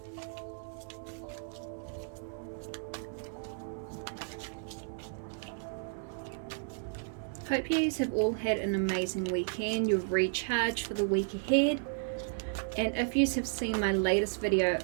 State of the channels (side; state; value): left; silent; 56 dB below the other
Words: Hope you have all had an amazing weekend. You've recharged for the week ahead. And if you have seen my latest video